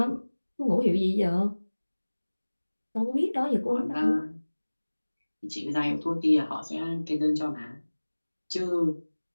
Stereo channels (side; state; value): both; inverted; correlation -1.00